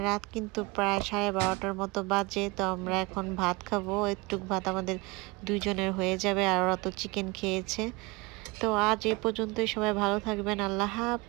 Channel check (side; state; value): left; quieter; 25.1 dB